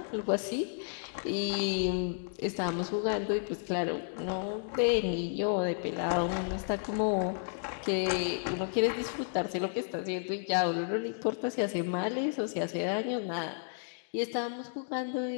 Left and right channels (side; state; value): right; silent; digital silence